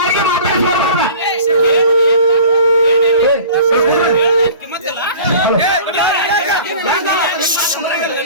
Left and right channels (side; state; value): both; inverted; correlation -0.43